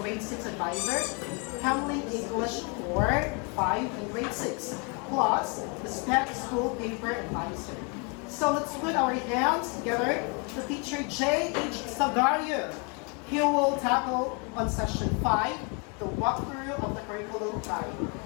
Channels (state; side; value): quieter; right; 33.5 dB